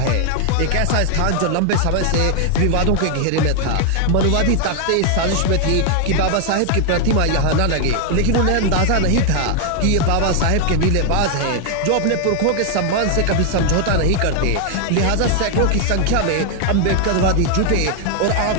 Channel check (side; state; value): both; different; correlation 0.00